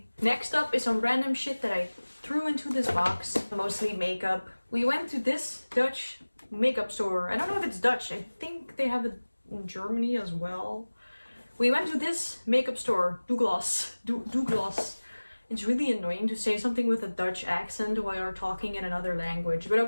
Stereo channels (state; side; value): inverted; both; correlation -1.00